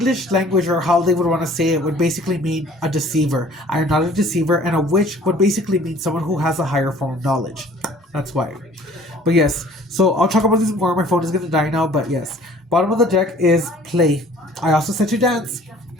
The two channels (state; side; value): normal; both; correlation 0.52